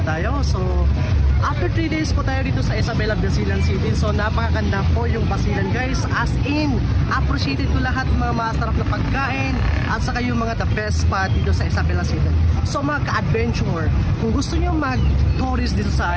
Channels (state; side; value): identical; both; correlation 1.00